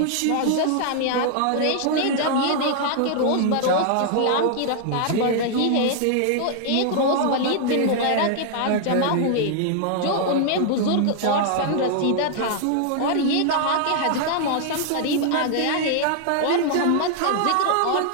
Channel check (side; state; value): both; different; correlation 0.00